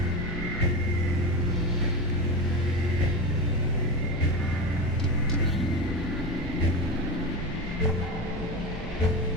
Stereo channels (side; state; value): right; noise; hum, 13 dB below the sound